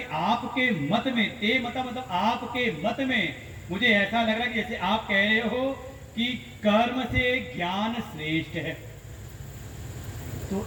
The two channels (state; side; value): identical; both; correlation 1.00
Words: आपके मत में, ते मता मतलब आपके मत में, मुझे ऐसा लग रहा है कि जैसे आप कह रहे हो कि कर्म से ज्ञान श्रेष्ठ है। तो